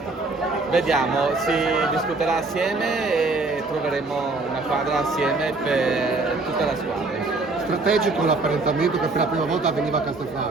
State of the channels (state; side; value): quieter; left; 3.4 dB